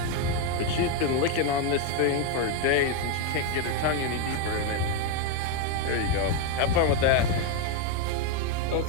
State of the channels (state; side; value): different; both; correlation 0.02